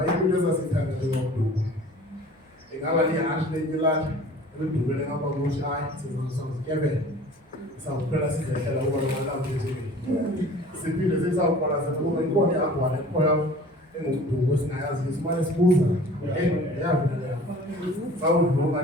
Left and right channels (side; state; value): both; normal; correlation 0.46